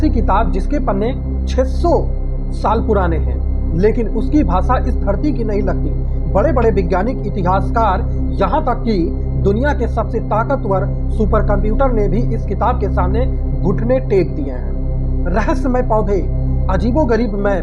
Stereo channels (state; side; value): identical; both; correlation 1.00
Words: किताब जिसके पन्ने 600 साल पुराने हैं, लेकिन उसकी भाषा इस धरती की नहीं लगती। बड़े बड़े वैज्ञानिक, इतिहासकार, यहाँ तक कि दुनिया के सबसे ताकतवर सुपर कंप्यूटर ने भी इस किताब के सामने घुटने टेक दिए हैं। रहस्यमय पौधे, अजीबोगरीब